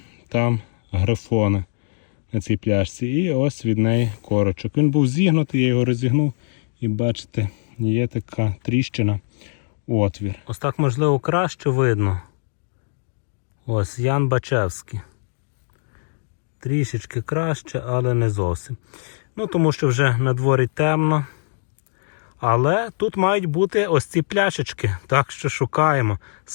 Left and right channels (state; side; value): silent; right; digital silence